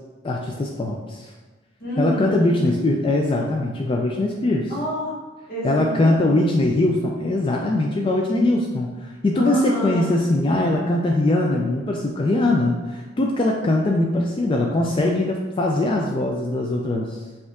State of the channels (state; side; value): normal; both; correlation 0.70